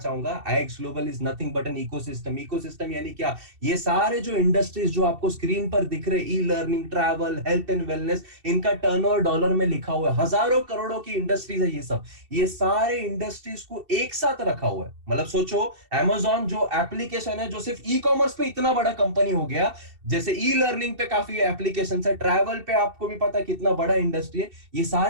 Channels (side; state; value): left; late; 2.7 ms